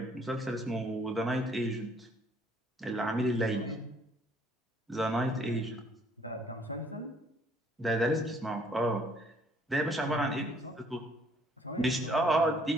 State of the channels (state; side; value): normal; both; correlation 0.63